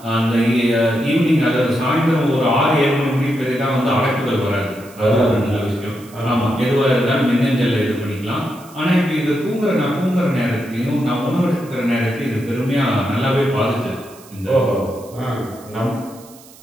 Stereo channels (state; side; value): noise; right; hiss, 23 dB below the sound